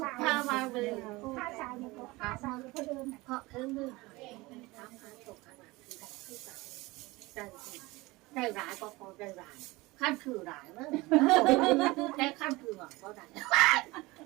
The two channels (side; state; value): left; quieter; 21.8 dB